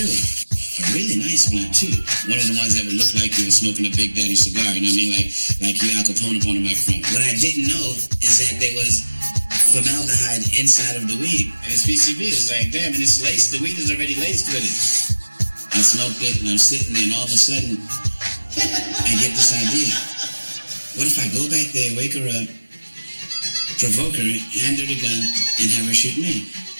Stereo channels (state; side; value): inverted; both; correlation -1.00